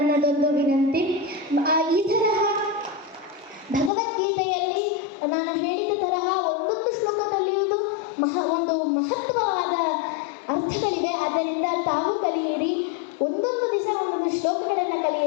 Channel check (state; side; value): drops out; right; at 3.9 s